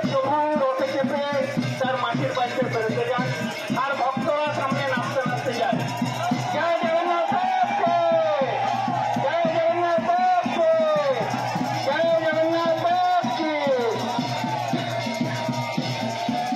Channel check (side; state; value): both; identical; correlation 1.00